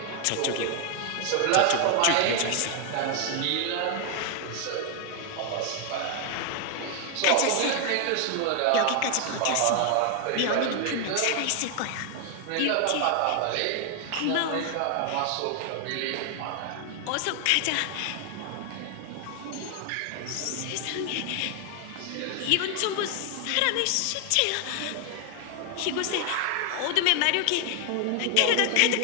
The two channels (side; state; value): both; different; correlation 0.00